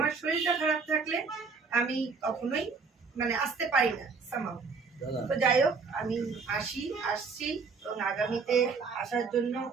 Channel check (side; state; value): left; quieter; 4.8 dB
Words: শরীরটা খারাপ থাকলে আমি কখনোই মানে আসতে পারি না সামাও। তো যাই হোক, আমি আসছি এবং আগামীতে আসার জন্য